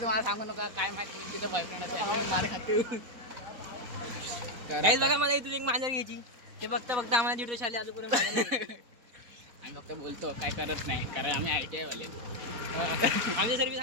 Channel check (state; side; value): late; left; 4.1 ms